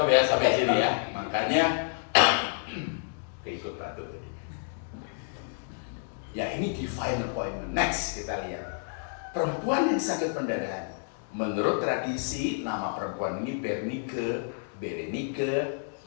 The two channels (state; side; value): silent; right; digital silence